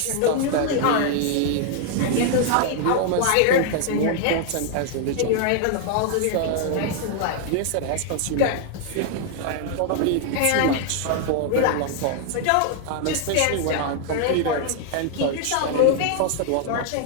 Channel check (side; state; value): both; different; correlation 0.00